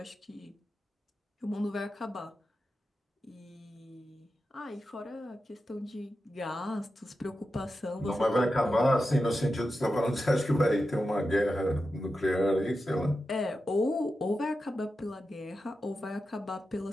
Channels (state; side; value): normal; both; correlation 0.90